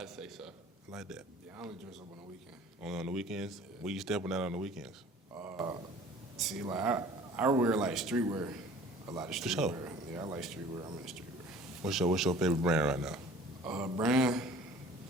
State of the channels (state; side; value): normal; both; correlation 0.47